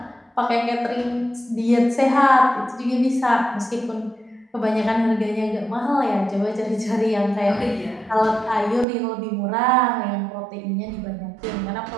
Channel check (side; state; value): left; drops out; at 8.8 s